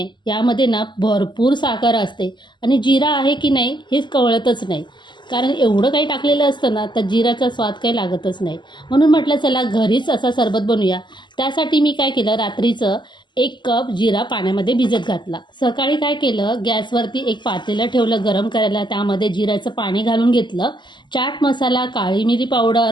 यामध्ये ना भरपूर साखर असते आणि जिरा आहे की नाही हेच कळतच नाही. कारण एवढं काही टाकलेलं असतं ना, तर जिराचा स्वाद काही लागतच नाही. म्हणून म्हटलं चला घरीच असा सरबत बनवूया. त्यासाठी मी काय केलं, रात्रीचं 1 कप जिरा पाण्यामध्ये भिजत घातला. सकाळी काय केलं, गॅसवरती एक पातेलं ठेवलं गरम करायला. त्यामध्ये जिऱ्याचं पाणी घालून घेतलं. चाट मसाला, काळी मिरी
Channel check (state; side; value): late; right; 0.22 ms